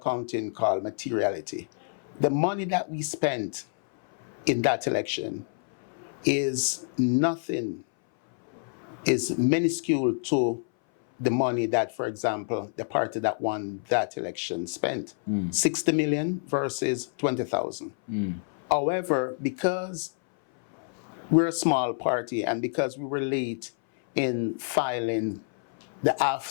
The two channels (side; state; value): right; silent; 58 dB below the other